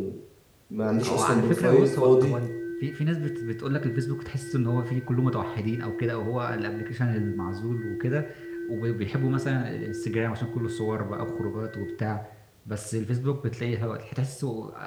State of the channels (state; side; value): identical; both; correlation 1.00